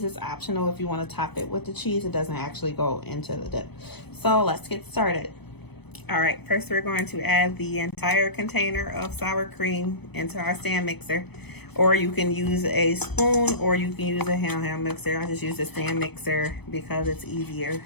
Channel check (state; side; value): late; right; 0.98 ms